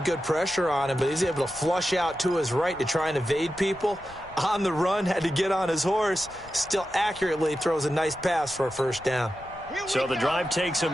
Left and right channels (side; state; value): left; noise; rumble, 22 dB below the sound